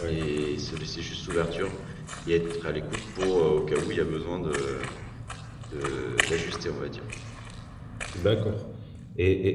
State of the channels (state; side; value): identical; both; correlation 1.00